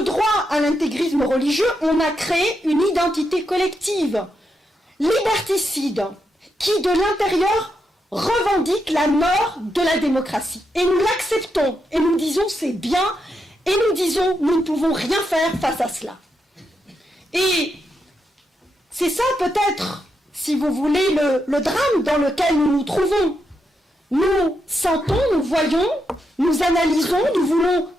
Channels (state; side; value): normal; both; correlation 0.83